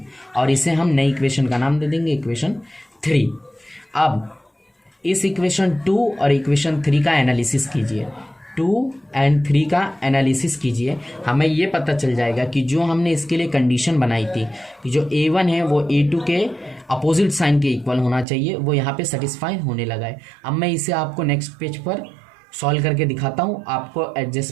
और इसे हम नई इक्वेशन का नाम दे देंगे इक्वेशन 3। अब इस इक्वेशन 2 और इक्वेशन 3 का एनालिसिस कीजिए, 2 एंड 3 का एनालिसिस कीजिए। हमें ये पता चल जाएगा कि जो हमने इसके लिए कंडीशन बनाई थी कि जो A1 है वो A2 के अपोजिट साइन के इक्वल होना चाहिए, वो यहाँ पे सेटिस्फाई होने लगा है। अब मैं इसे आपको नेक्स्ट पेज पर सॉल्व करके दिखाता हूँ, आपको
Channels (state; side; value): drops out; left; at 18.2 s